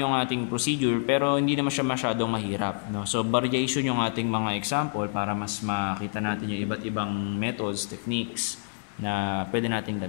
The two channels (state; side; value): silent; right; digital silence